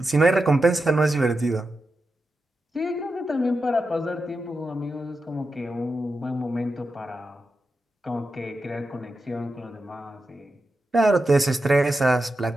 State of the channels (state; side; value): normal; both; correlation 0.89